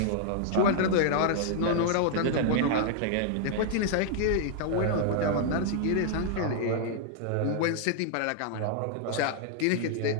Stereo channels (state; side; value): different; both; correlation -0.01